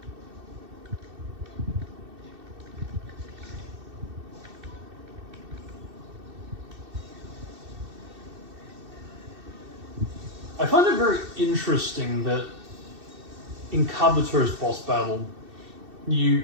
I find it very interesting that in Kabuto's boss battle, you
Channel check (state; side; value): late; left; 2.7 ms